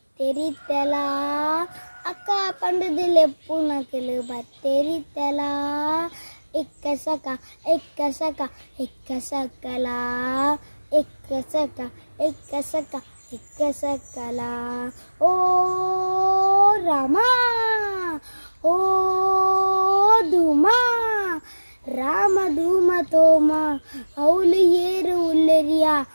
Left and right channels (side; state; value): both; inverted; correlation -1.00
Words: ಅಕ್ಕ ಪಂಡದಿಲೆಪ್ಪು ನಕಲು ಬತ್ತೆರಿತಲ ಎಕ್ಕಸಕ ಎಕ್ಕಸಕ ಎಕ್ಕಸಕಲ ಎಕ್ಕಸಕ ಎಕ್ಕಸಕ ಎಕ್ಕಸಕಲ ಓ ರಾಮ ಓ ಧೂಮ ರಾಮ ಧೂಮ ತೋಮ ಅವಳು ಏರು ಉಲ್ಲೆರಿಯ